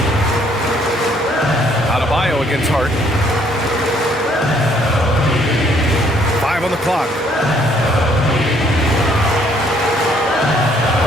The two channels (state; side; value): normal; both; correlation 0.65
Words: Adebayo against Hart. 5 on the clock.